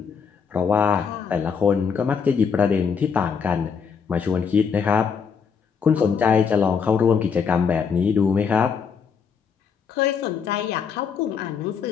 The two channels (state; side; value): quieter; right; 6.3 dB